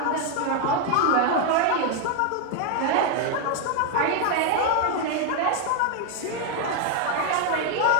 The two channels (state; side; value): different; both; correlation 0.01